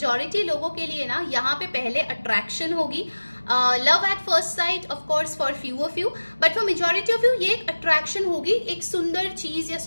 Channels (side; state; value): both; inverted; correlation -1.00